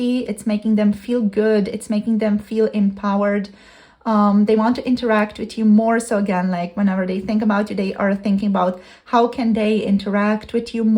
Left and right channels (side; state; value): both; identical; correlation 1.00